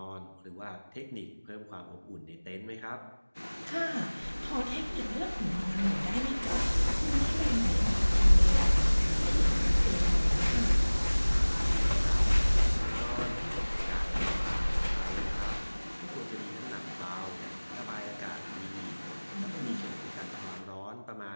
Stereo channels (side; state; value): both; inverted; correlation -1.00